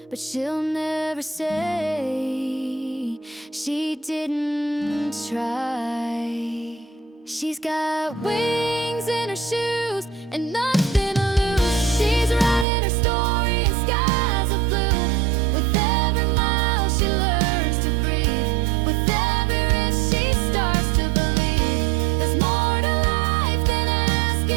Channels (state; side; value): drops out; left; at 12.7 s